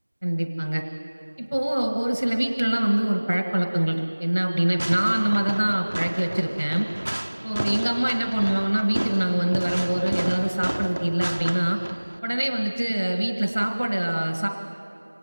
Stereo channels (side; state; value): both; inverted; correlation -1.00